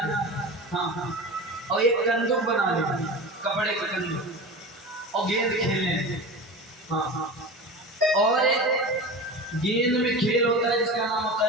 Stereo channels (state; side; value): normal; both; correlation 0.30